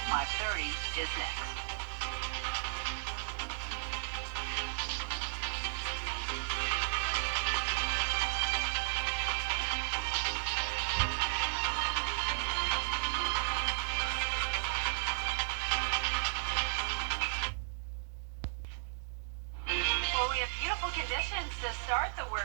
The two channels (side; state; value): left; silent; digital silence